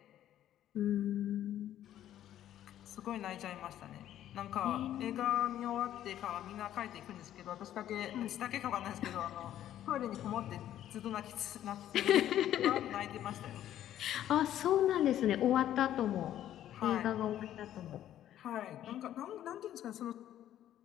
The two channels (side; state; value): right; quieter; 11.8 dB